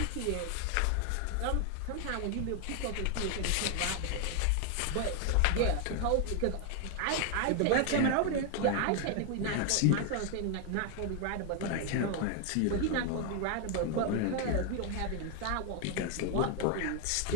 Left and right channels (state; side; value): different; both; correlation 0.00